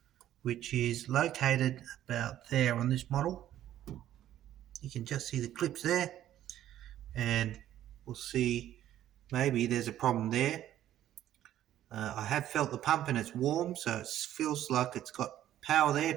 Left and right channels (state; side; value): quieter; left; 12.3 dB